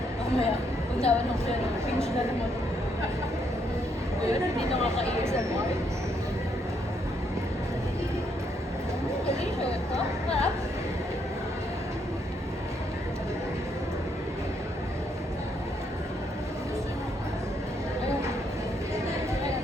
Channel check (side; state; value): both; normal; correlation 0.74